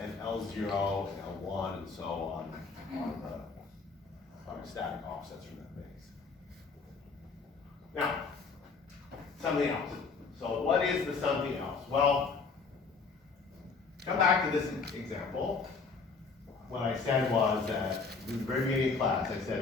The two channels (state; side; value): quieter; right; 4.7 dB